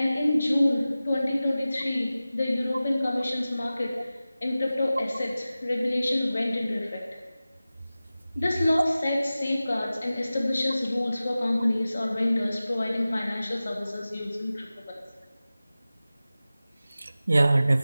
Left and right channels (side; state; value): both; inverted; correlation -0.96